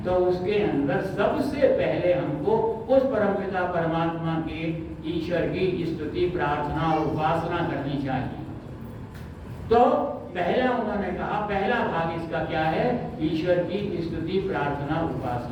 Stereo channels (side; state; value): both; identical; correlation 1.00